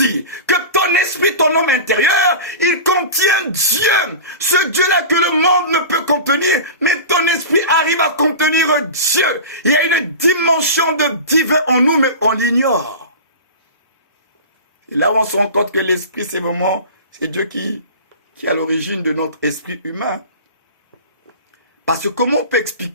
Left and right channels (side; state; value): both; inverted; correlation -0.32